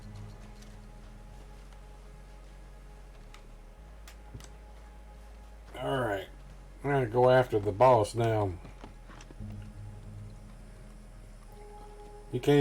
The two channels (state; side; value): identical; both; correlation 1.00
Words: Alright. I'm gonna go after the boss now. You